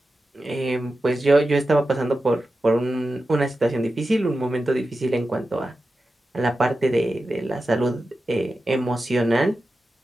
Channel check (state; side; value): normal; both; correlation 0.92